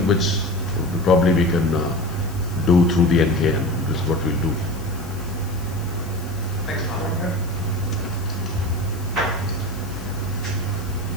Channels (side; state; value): left; noise; hiss, 19 dB below the sound